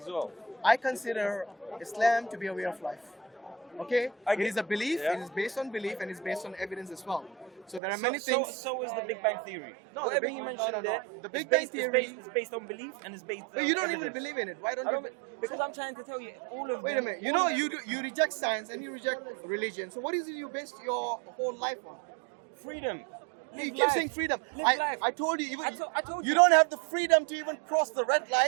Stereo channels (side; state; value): left; drops out; at 7.8 s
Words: as well? I consider Islam to be a way of life. Okay? I It get- is a belief, Yeah. it is based on belief, and it's based on evidence as well. So there are many things. So is the Big Bang theory. No, Whatever the Big- you no, mentioned no, no. there, The Big it's Bang based- theory- it's based on belief and it's based But you don't even evidence. believe in it. Why don't I you? don't, because I'm trying to tell you all of Wait a them- minute. You know, you reject science and you reject religion. So what is it you base your whole life on? freedom. You Live keep life. saying freedom. Live life. I told you, even I told you you. don't have the freedom to even cross the red